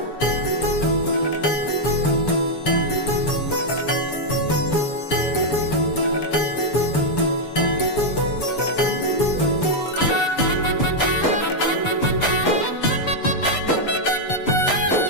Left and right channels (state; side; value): late; right; 6.9 ms